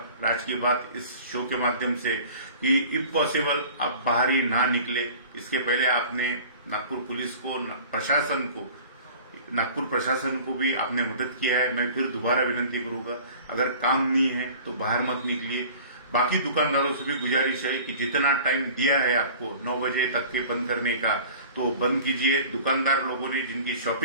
राज की बात इस शो के माध्यम से कि इफ पॉसिबल आप बाहर ही ना निकले। इसके पहले आपने नागपुर पुलिस को, नागपुर प्रशासन को भी आपने मदद किया है। मैं फिर दोबारा विनंती करूंगा, अगर काम नहीं है तो बाहर मत निकलिए। बाकी दुकानदारों से भी गुजारिश है कि जितना टाइम दिया है आपको 9 बजे तक के बंद करने का, तो बंद कीजिए। दुकानदार लोगों ने जिनकी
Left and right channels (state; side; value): inverted; both; correlation -0.44